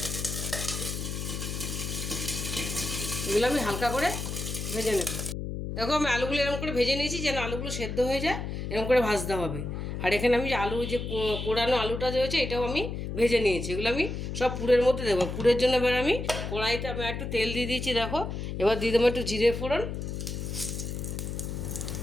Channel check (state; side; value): noise; left; hum, 5 dB below the sound